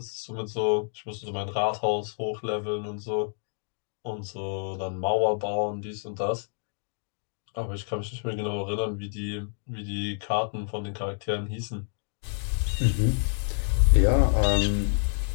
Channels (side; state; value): right; silent; digital silence